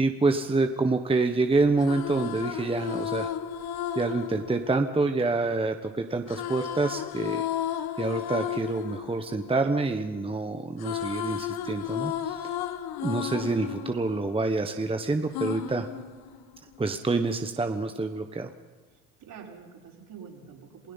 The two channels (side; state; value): both; normal; correlation 0.61